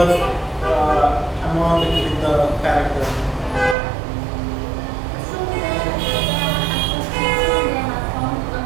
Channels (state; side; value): drops out; left; at 3.8 s